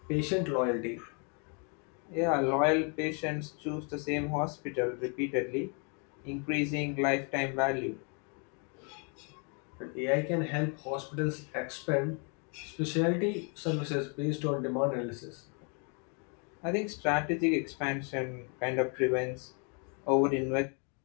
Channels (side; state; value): right; quieter; 37.5 dB